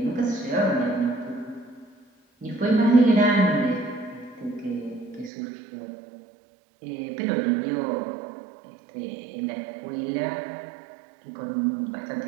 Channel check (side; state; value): left; drops out; at 5.3 s